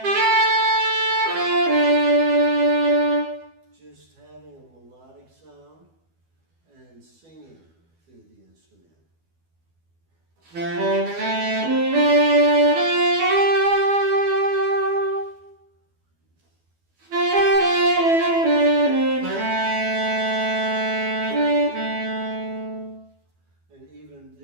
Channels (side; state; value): left; late; 12 ms